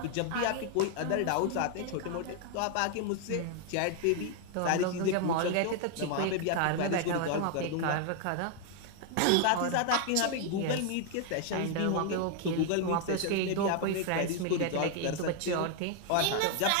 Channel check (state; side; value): different; both; correlation 0.00